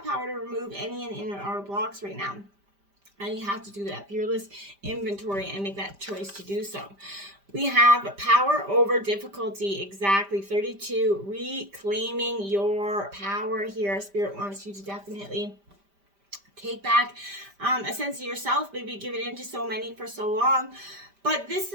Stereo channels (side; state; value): left; late; 5.1 ms